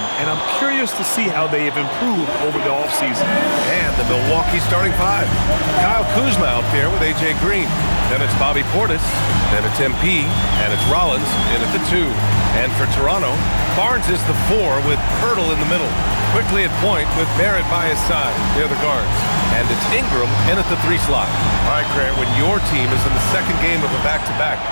and I'm curious to see how they have improved over the offseason. And the Milwaukee starting five. Kyle Kuzma out there with A.J. Green. Then it's Bobby Portis. Then it's MP. And it's Rollins in at the 2. And for Toronto, Barnes is the 4 with Pirtle in the middle. Quickly at point with Barrett by his side. They're the guards. And it's Ingram in at the 3 slot. All right, Grant, when your team is in the second game of a back-to-back,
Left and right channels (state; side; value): inverted; both; correlation -1.00